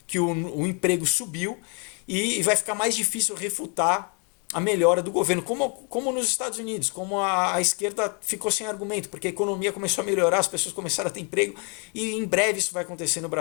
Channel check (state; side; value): quieter; right; 36.3 dB